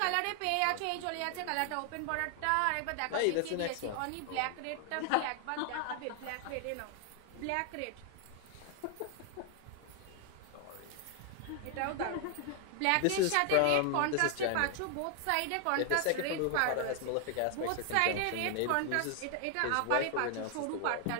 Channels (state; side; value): different; both; correlation 0.00